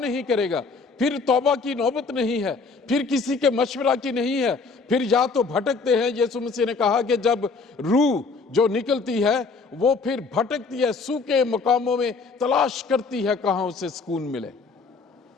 करेगा, फिर तौबा की नौबत नहीं है, फिर किसी के मशवरा की नहीं है, फिर या तो भटकते हैं। यीशु मसीह ने कहा कि जब रूह जो निकलती है वो फिर भटकती है, सूखे मकामों में तलाश करती है कहां उसे सुकून मिले।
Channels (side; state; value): right; quieter; 4.4 dB